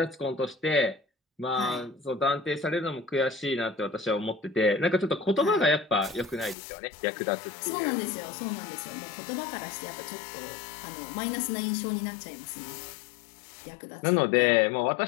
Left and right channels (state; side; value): drops out; right; at 6.6 s